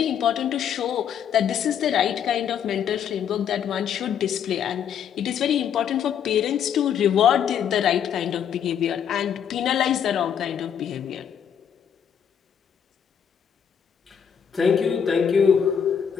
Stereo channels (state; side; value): quieter; right; 8.3 dB